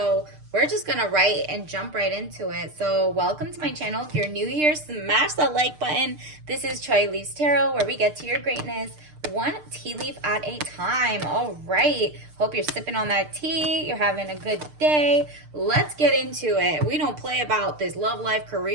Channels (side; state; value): left; late; 6.6 ms